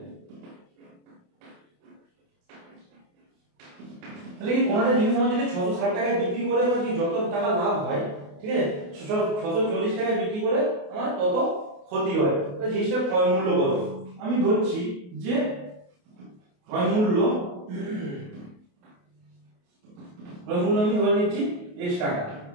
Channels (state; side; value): late; left; 28 ms